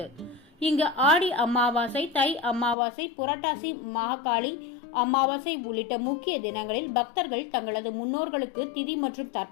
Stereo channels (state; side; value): drops out; right; at 2.8 s